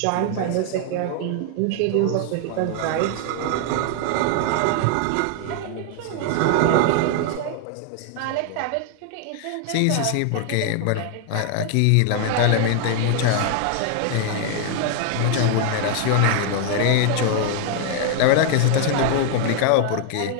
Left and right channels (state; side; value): different; both; correlation 0.00